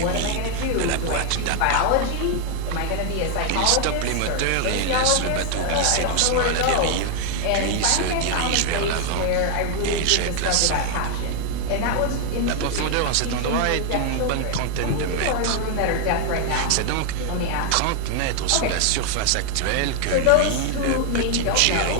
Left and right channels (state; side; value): different; both; correlation 0.00